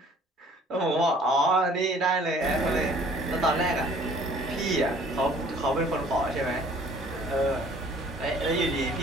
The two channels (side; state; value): both; normal; correlation 0.55